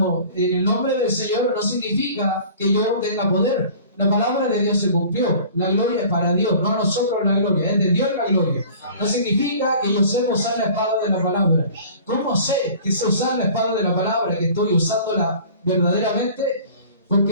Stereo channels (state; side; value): inverted; both; correlation -0.45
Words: en el nombre del Señor, no significa que yo tenga poder. La palabra de Dios se cumplió. La gloria es para Dios, no a nosotros la gloria, es de Dios la gloria. No significa que yo sé usar la espada de la palabra. ¿Cómo sé que sé usar la espada de la palabra, que estoy usándola verdaderamente?